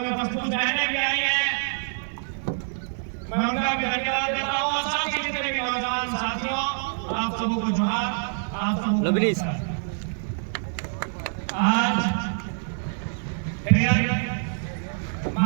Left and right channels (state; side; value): silent; left; 61 dB below the other